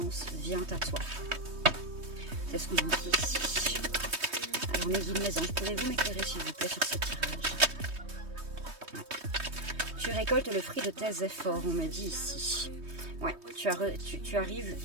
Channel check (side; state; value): left; late; 3.2 ms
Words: vient à toi. C'est ce qu'on nous dit ici. Alors mes guides, mes anges, pouvez-vous m'éclairer s'il vous plaît sur ce tirage? Ouais. Tu récoltes le fruit de tes efforts, on me dit ici. Ouais, tu